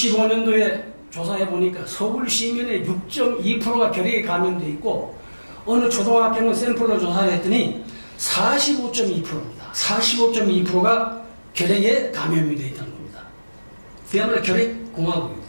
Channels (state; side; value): inverted; both; correlation -1.00